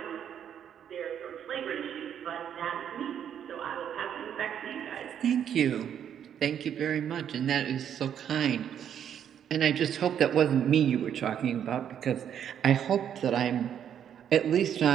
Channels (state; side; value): quieter; left; 9.1 dB